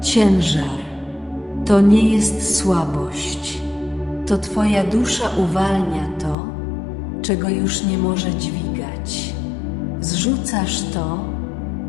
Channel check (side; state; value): right; drops out; at 6.4 s